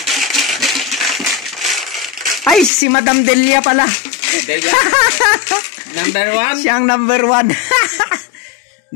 Ay, si Madam Delia pala. Delia. Number 1. Siyang number 1.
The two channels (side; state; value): right; drops out; at 2.7 s